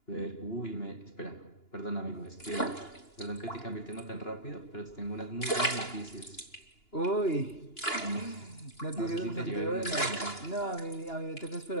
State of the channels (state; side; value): late; right; 2.9 ms